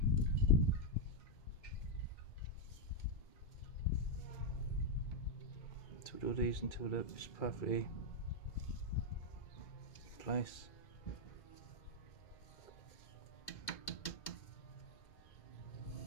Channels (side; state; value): right; late; 2.2 ms